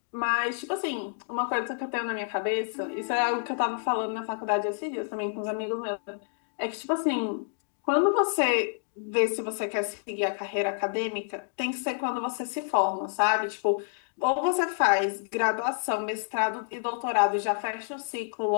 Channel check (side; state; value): right; silent; digital silence